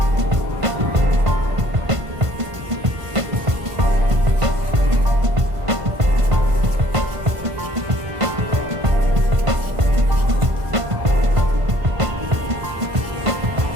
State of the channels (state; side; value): late; left; 1.5 ms